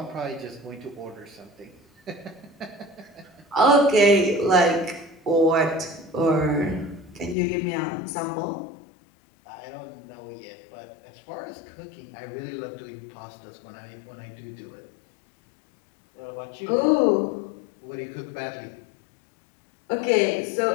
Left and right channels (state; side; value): drops out; right; at 7.4 s